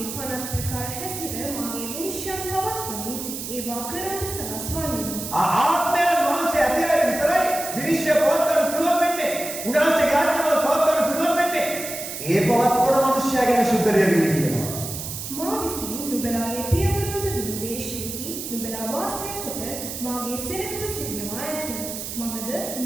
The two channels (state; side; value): noise; right; hiss, 7 dB below the sound